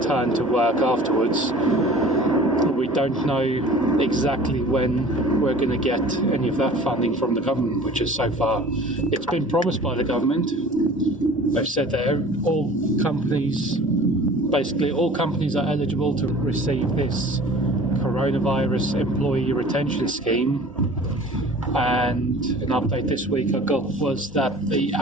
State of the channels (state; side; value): normal; both; correlation 0.45